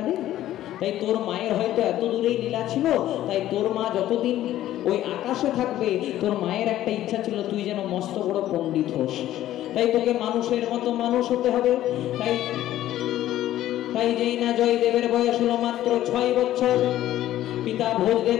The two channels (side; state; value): right; quieter; 13.4 dB